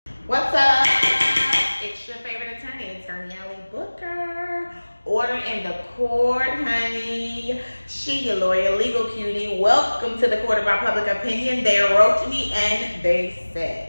What's up? It's your favorite attorney, Attorney Ellie Booker. Order in the court, honey. She, your lawyer, legal cutie. Welcome to the court of our public opinion. They wrote to me and they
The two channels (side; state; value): both; inverted; correlation -1.00